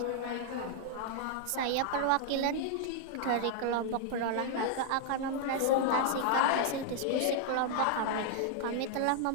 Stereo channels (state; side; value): different; both; correlation -0.01